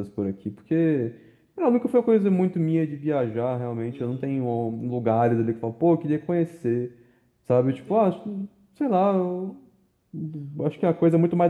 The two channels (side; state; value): both; identical; correlation 1.00